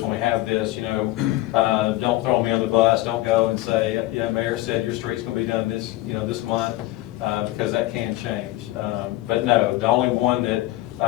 when we have this, don't throw me on the bus. Don't go and say, yeah, Mayor said your street's going to be done this, this month, because that can change. But no, the only one that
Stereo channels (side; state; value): right; quieter; 17.1 dB